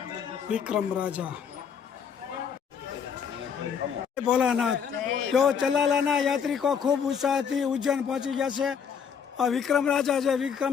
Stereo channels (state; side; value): quieter; right; 7.1 dB